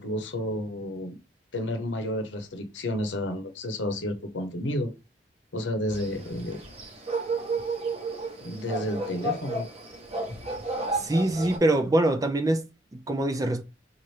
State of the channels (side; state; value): both; normal; correlation 0.63